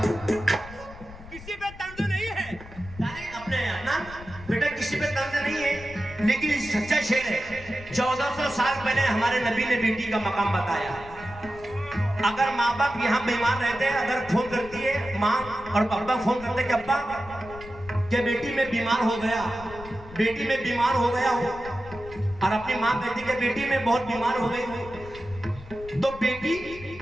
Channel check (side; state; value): left; noise; rumble, 17 dB below the sound